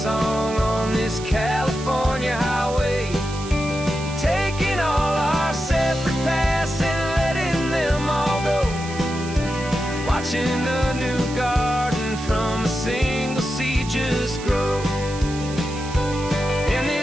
on this California highway, taking all our separate paths and letting them all go, watching a new garden from a single seed just grow. And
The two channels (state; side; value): noise; right; hiss, 14 dB below the sound